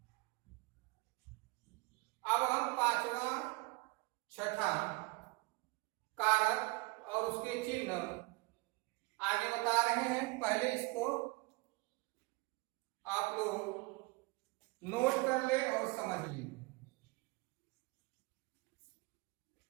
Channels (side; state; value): left; quieter; 25.8 dB